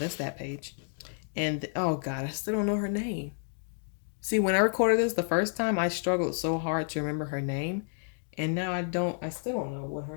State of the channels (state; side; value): silent; right; 58 dB below the other